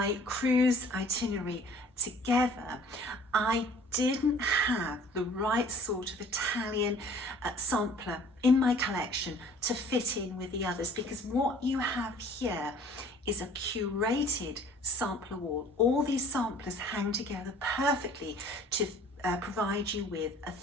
cruise itinerary together, I didn't have the right sort of Italian sampler in my collection to fit in with the others, because what you have here is a curated sampler wall. All these samplers hang together perfectly to provide you with a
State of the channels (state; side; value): normal; both; correlation 0.52